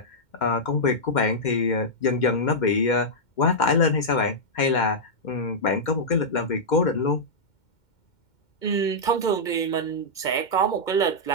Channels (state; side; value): late; right; 2.1 ms